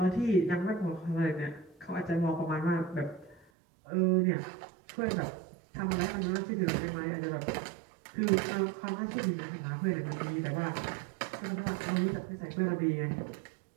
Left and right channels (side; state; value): left; drops out; at 3.5 s